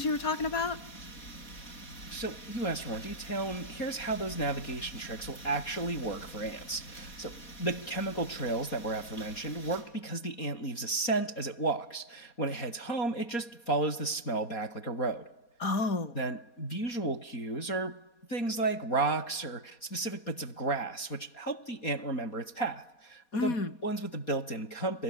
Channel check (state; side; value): late; right; 4.2 ms